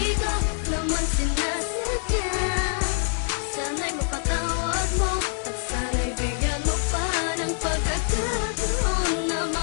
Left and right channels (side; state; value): right; silent; 62 dB below the other